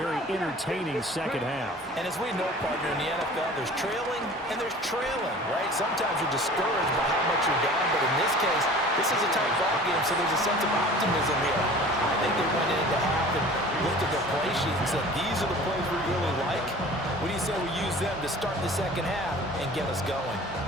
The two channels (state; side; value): normal; both; correlation 0.44